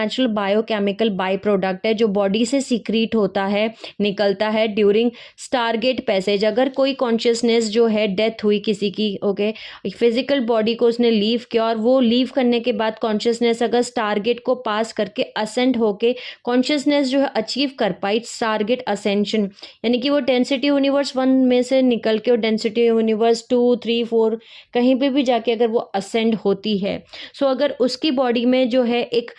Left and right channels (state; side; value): identical; both; correlation 1.00